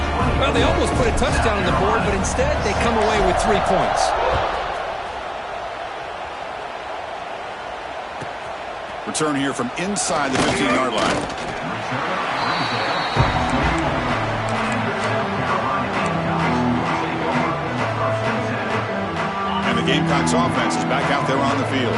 Well, they almost put a touchdown on the board, but instead they come away with 3 points. Return here from inside the 15-yard line. And the Gamecocks offense is back out there on the field.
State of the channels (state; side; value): identical; both; correlation 1.00